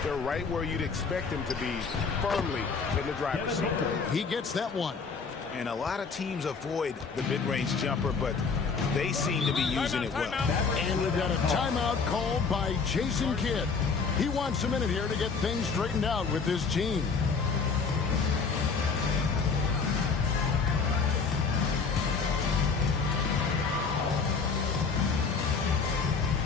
they're right where you'd expect them to be, firmly in the driver's seat. He gets that one. And a lot of teams avoid the mid-range jumper, but they seem to be using it well. And we've got a timeout called by Jason Kidd. He wants a minute here to get things straightened out with his team.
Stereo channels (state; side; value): quieter; right; 5.1 dB